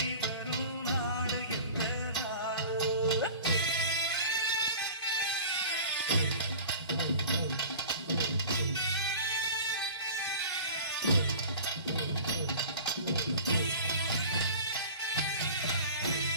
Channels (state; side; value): inverted; both; correlation -0.39